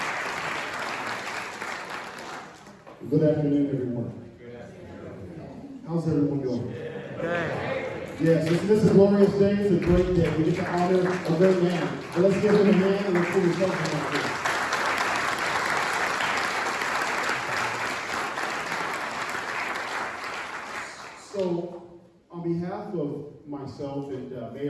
Good afternoon, everyone. How's everyone doing? Yes, this is a glorious day. It's a great day. We get to honor a great man. But let's give him a hand and let's put his help up here. So, on behalf of myself and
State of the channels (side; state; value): both; identical; correlation 1.00